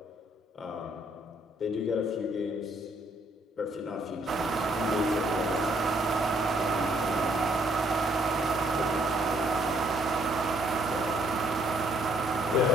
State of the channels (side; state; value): both; normal; correlation 0.68